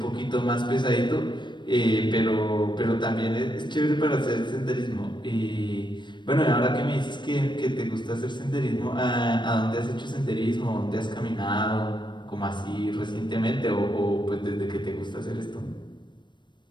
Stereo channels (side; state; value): right; late; 0.22 ms